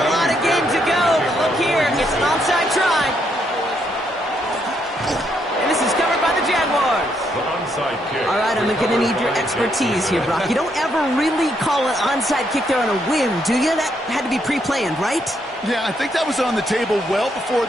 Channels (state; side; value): normal; both; correlation 0.75